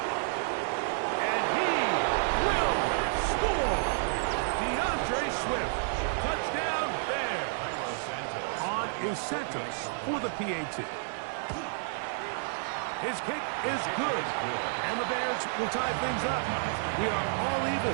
And he will score. DeAndre Swift. Touchdown there. On is Santos for the PAT. His kick is good. And the Bears will tie things up. We are all even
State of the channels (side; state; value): left; silent; digital silence